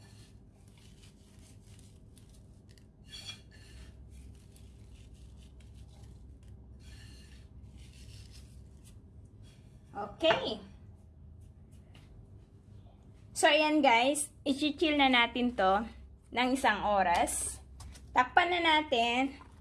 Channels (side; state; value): both; identical; correlation 1.00